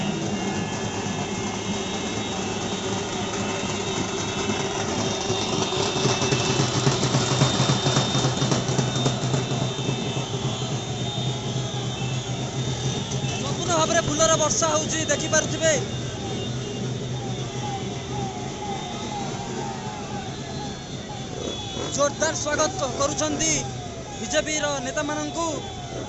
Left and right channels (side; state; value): both; identical; correlation 1.00